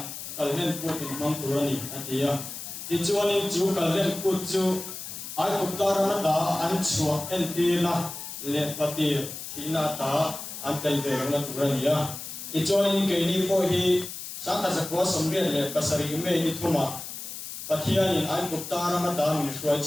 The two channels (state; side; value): noise; left; hiss, 9 dB below the sound